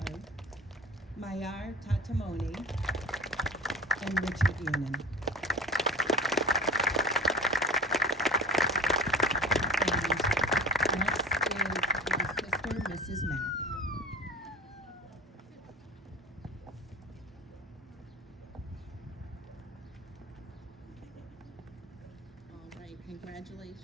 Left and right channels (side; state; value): both; normal; correlation 0.36